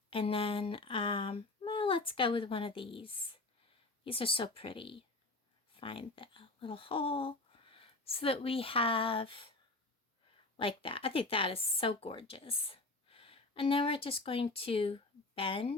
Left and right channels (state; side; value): quieter; right; 3.1 dB